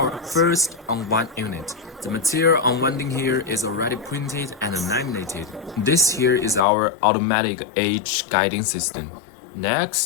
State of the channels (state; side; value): drops out; right; at 6.6 s